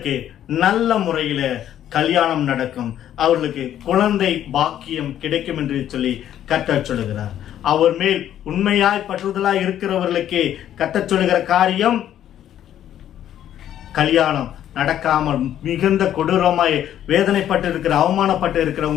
நல்ல முறையில கல்யாணம் நடக்கும், அவர்களுக்கு குழந்தை பாக்கியம் கிடைக்கும் என்று சொல்லி கர்த்தர் சொல்லுகிறார். அவர் மேல் உண்மையாய் பற்றுதலாய் இருக்கிறவர்களுக்கு கர்த்தர் சொல்லுகிற காரியம், கல்யாணம் நடக்காமல் மிகுந்த கொடூரமாய் வேதனைப்பட்டு இருக்கிற, அவமானப்பட்டு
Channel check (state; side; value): quieter; right; 11.0 dB